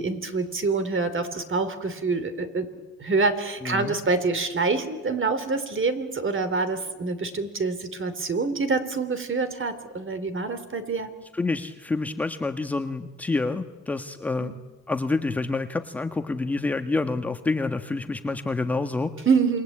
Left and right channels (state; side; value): normal; both; correlation 0.43